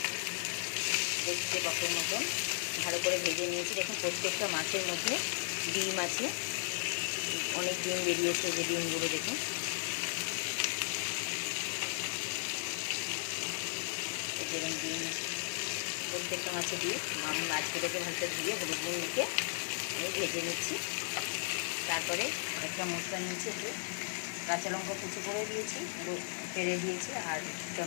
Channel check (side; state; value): right; silent; digital silence